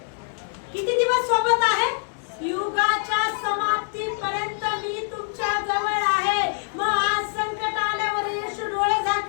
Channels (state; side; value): silent; right; 62 dB below the other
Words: किती दिवस सोबत आहे? युगाच्या समाप्तीपर्यंत मी तुमच्या जवळ आहे. मग आज संकट आल्यावर येशू डोळे